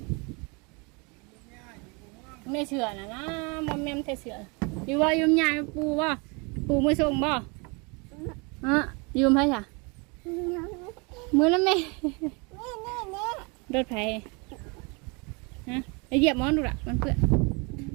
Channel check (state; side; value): quieter; left; 30.6 dB